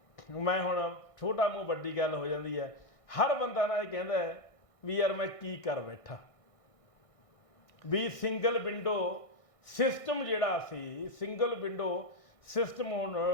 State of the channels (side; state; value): right; late; 1.6 ms